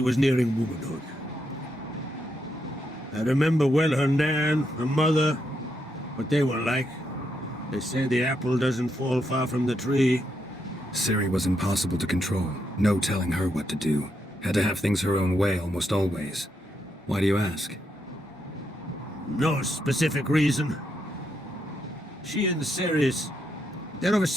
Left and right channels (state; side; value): normal; both; correlation 0.80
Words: nearing womanhood? I remember well her nan, her mother, what they were like. They say the apple doesn't fall far from the tree. Ciri was impossible to control. No telling her what to do. Had to have things her own way almost always. Why do you ask? No specific reason. She and Ceres, they're of a